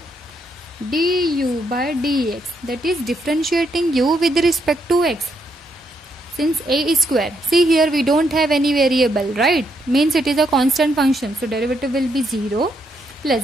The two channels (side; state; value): both; normal; correlation 0.76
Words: du by dx, that is differentiating u with respect to x. Since a is square, see here we don't have any variable, right? Means it is a constant function, so derivative will be 0 plus